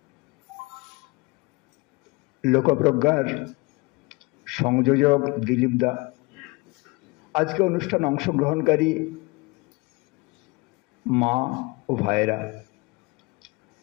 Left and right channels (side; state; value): right; quieter; 25.9 dB